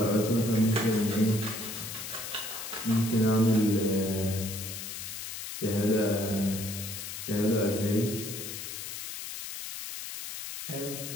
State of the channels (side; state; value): left; noise; hiss, 8 dB below the sound